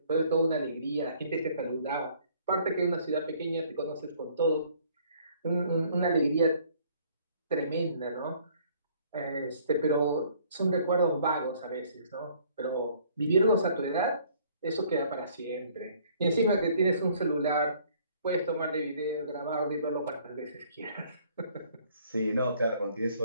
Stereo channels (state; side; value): inverted; both; correlation -0.59